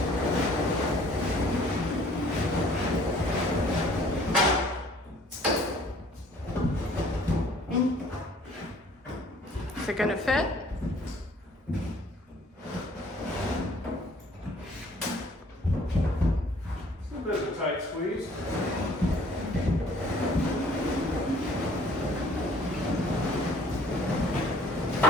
Is it gonna fit? It's a bit of a tight squeeze.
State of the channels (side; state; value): both; normal; correlation 0.55